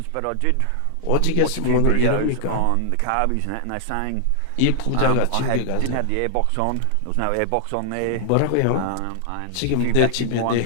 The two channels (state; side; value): different; both; correlation -0.01